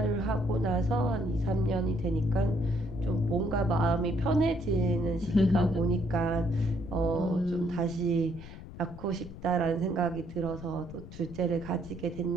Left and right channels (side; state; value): left; noise; rumble, 14 dB below the sound